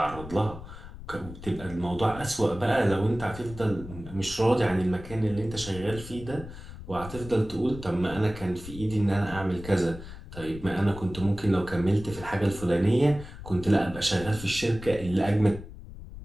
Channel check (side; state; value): left; noise; rumble, 13 dB below the sound